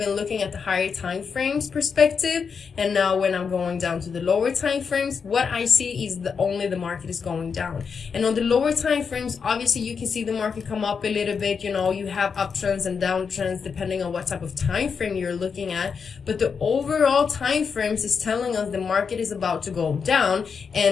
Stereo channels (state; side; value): quieter; right; 6.0 dB